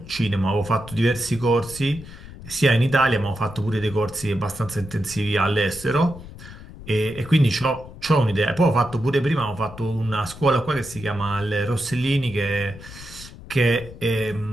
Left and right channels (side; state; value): left; noise; rumble, 15 dB below the sound